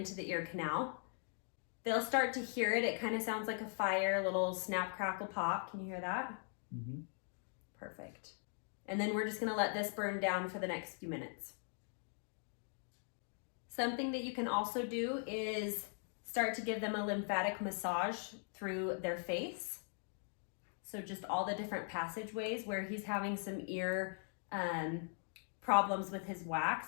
the ear canal. They'll start to hear it. It kind of sounds like a fire, a little snap, crackle, pop. Can you hear that? Mm-hmm. Perfect. And then we're just gonna let this burn down for the next few minutes. Something that you can also do is start to give them a lymphatic massage through their face. So just all the different passageways where he's having some ear problems with his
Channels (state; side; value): silent; right; 51 dB below the other